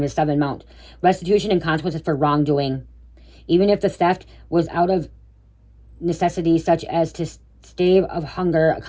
it's 7 amount. Restitution and consequences for wrongdoing. Even if the theft was out of necessity, such as to stave of hunger,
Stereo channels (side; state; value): both; identical; correlation 1.00